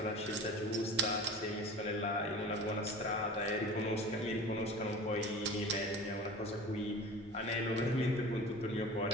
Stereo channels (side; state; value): both; normal; correlation 0.37